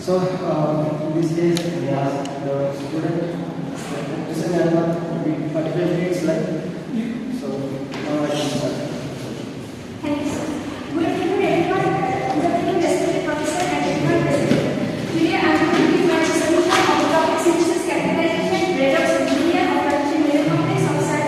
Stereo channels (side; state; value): both; identical; correlation 1.00